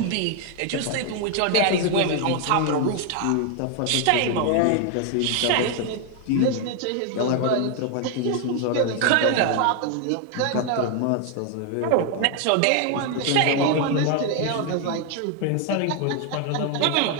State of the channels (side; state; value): both; different; correlation 0.01